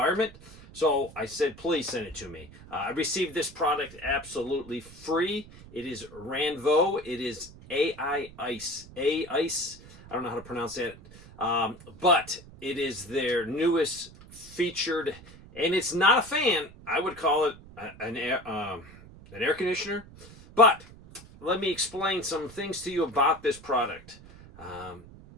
So I said, please send it to me. I received this product absolutely free. It is RANVOO. It is AICE. AICE. I don't know how to pronounce that. But it is their newest featured, and it's not a fan. I would call it an air conditioner. But let me explain some things to you about this product.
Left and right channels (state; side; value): noise; right; rumble, 19 dB below the sound